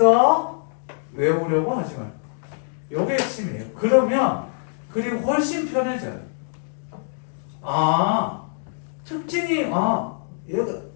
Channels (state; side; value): silent; right; digital silence